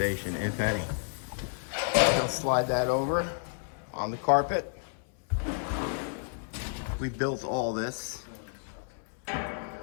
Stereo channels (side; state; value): right; silent; 57 dB below the other